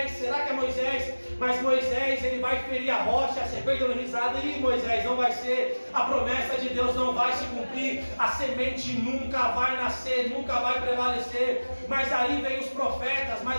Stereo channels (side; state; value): both; inverted; correlation -1.00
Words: será que é Moisés? Mas Moisés, ele vai ferir a rocha. A serpente dando risada: e Moisés, não vai ser. A promessa de Deus não vai se cumprir. A semente nunca vai nascer, nunca vai prevalecer. Mas aí vem os profetas.